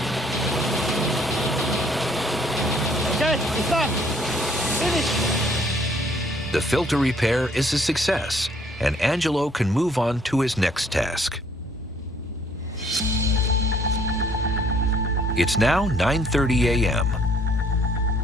Okay, it's done. Finish. The filter repair is a success, and Angelo can move on to his next task. It's now 9:30 a.m.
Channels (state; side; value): normal; both; correlation 0.62